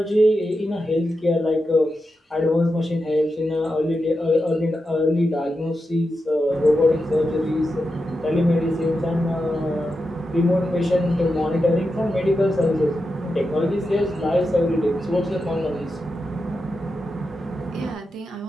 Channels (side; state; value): both; normal; correlation 0.89